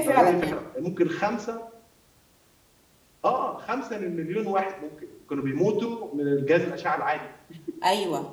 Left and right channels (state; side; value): identical; both; correlation 1.00